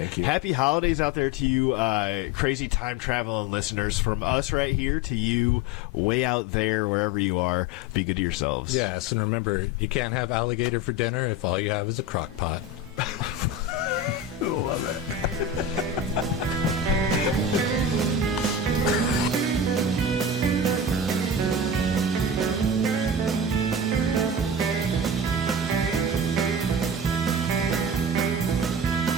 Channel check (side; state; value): both; normal; correlation 0.27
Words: you. Happy holidays out there to you, crazy time traveling listeners. From us right here to you, way out there, wherever you are. Be good to yourselves. Yes, and remember, you can't have alligator for dinner if all you have is a crock pot. Love it.